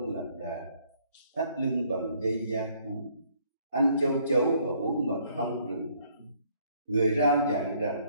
lạc đà, thắt lưng bằng dây da thú, ăn châu chấu và uống mật ong rừng. Người rao giảng rằng:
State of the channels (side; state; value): both; inverted; correlation -0.64